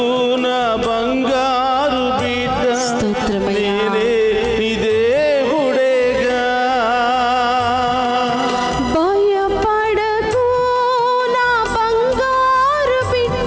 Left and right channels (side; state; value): both; identical; correlation 1.00